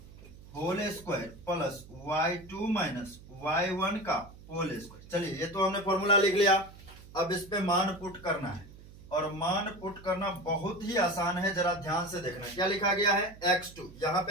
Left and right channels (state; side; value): noise; right; hum, 19 dB below the sound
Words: whole square plus y2 minus y1 का होल स्क्वायर। चलिए ये तो हमने फॉर्मूला लिख लिया, अब इस पे मान पुट करना है, और मान पुट करना बहुत ही आसान है, जरा ध्यान से देखना। क्या लिखा गया है x2, यहाँ